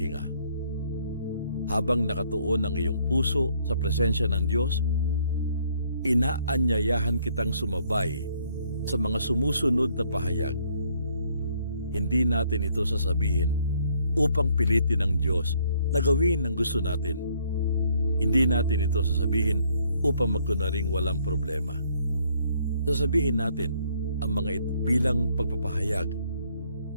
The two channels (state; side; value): inverted; both; correlation -0.66